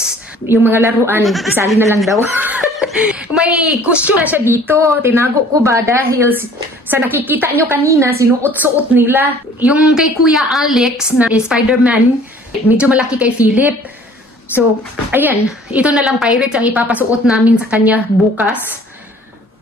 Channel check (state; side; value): normal; both; correlation 0.52